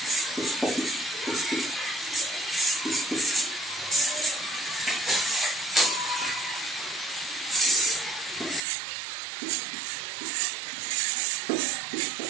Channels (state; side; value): drops out; left; at 8.7 s